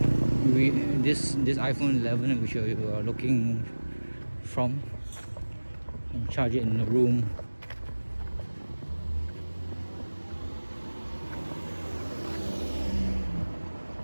this iPhone 11, which you are looking from. and charge it in the room.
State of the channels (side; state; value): both; inverted; correlation -1.00